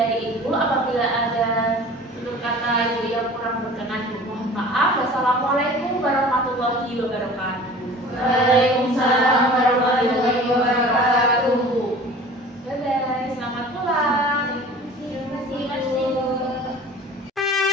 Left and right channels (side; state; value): both; normal; correlation 0.43